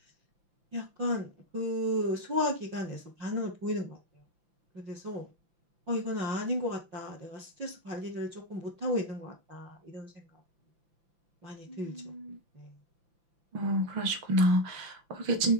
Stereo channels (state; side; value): late; left; 5.9 ms